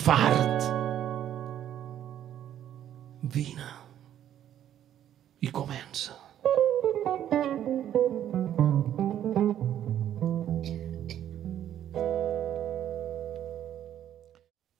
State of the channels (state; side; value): quieter; left; 10.9 dB